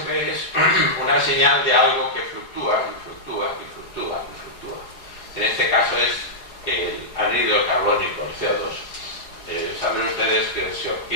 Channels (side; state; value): right; late; 4.8 ms